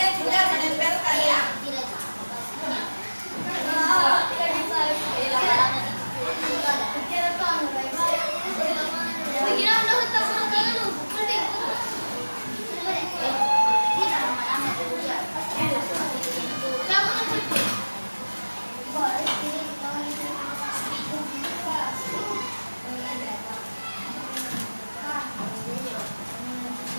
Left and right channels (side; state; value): both; inverted; correlation -1.00